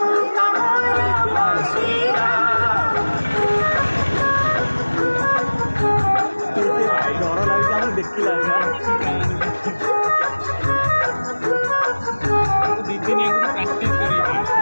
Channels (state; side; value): inverted; both; correlation -1.00